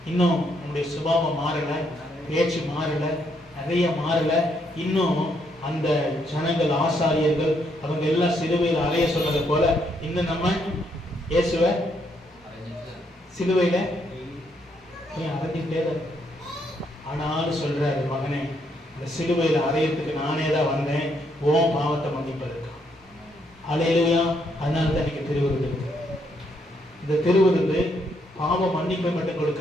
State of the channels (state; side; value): normal; both; correlation 0.74